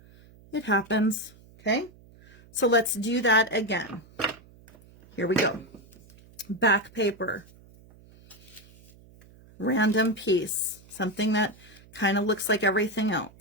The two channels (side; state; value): right; noise; hum, 25 dB below the sound